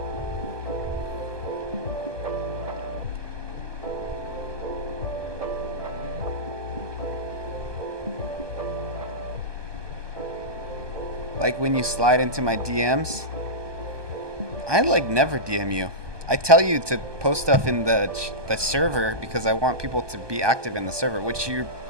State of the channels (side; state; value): left; late; 1.2 ms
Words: Like when you slide into my DMs, I like never DM you. I tell you to post stuff in the server because I want people to be active in the server, which you're